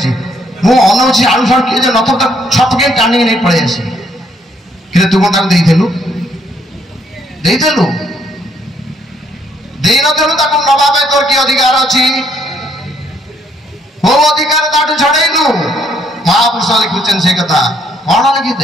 ମୁଁ ଅନଉଛି ଆଳୁ ସାଳୁ କିଏ ଯେ ନଥିବ ତାକୁ ଛପକେଇ ଟାଣିକି ନେଇ ପଳେଇ ଆସି। କିନ୍ତୁ ତୁ କ'ଣ ତାକୁ ଦେଇଥିଲୁ? ଦେଇଥିଲୁ? ଦେଇନଥିଲୁ ତାକୁ ନବା ପାଇଁ ତୋର କି ଅଧିକାର ଅଛି? କୋଉ ଅଧିକାର ତାଠୁ ଛଡ଼େଇଲୁ? ମହାପୁରୁଷ ଲେଖୁଛନ୍ତି ସେ କଥା। କ'ଣ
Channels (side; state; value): both; normal; correlation 0.68